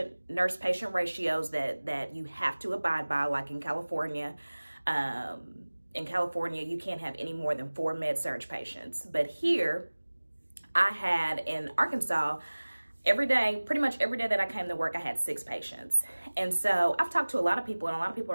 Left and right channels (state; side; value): inverted; both; correlation -1.00